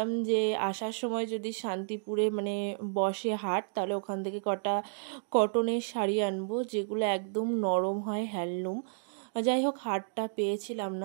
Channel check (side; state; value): left; silent; digital silence